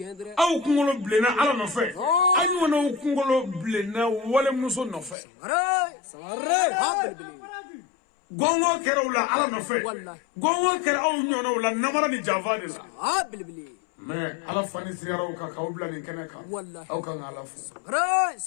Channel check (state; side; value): drops out; right; at 5.2 s